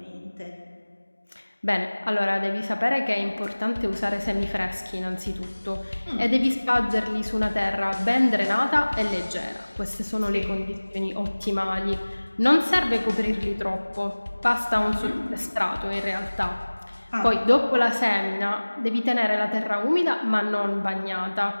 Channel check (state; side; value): inverted; both; correlation -1.00